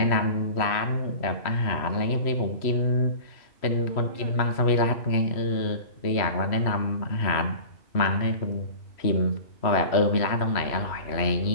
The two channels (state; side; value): late; right; 3.0 ms